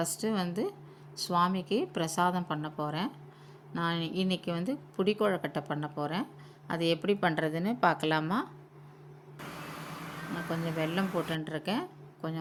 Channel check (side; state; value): both; identical; correlation 1.00